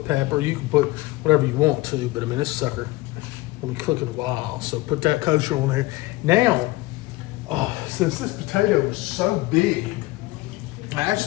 pepper, you can put whatever you want to, but I mean, this sucker will be cooking a while, so put that kosher on there. Now, since this potato is so big, I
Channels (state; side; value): quieter; right; 19.8 dB